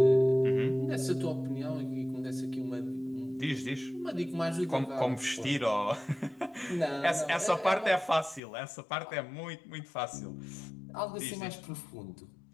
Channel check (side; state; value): right; drops out; at 8.4 s